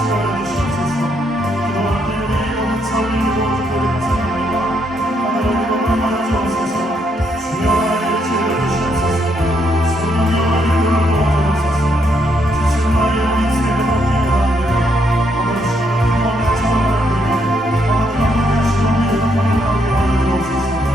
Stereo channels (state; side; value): normal; both; correlation 0.75